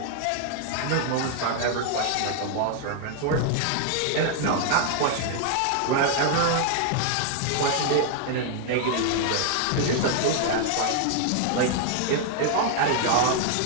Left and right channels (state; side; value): different; both; correlation 0.00